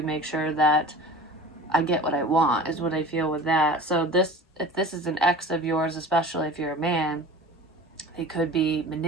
make sure that I get what I want, is what I feel with that. So if this is an ex of yours, especially if you're a man, they could be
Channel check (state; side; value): normal; both; correlation 0.39